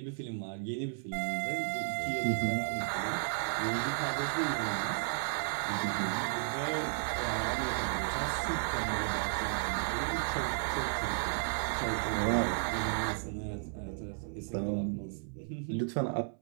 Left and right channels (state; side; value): silent; left; 55 dB below the other